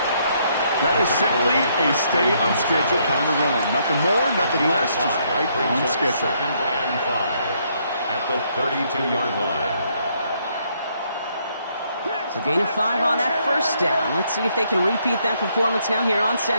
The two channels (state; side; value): inverted; both; correlation -0.71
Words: That is simply a stay on schedule kind of run. Nothing more, nothing less, just right on schedule. 2nd and 5 at the 32-yard line. So gain of 5 on that 1st down. Let's see if they can repeat that performance now here on